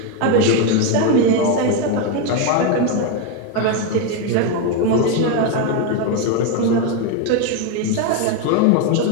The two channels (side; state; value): both; different; correlation 0.02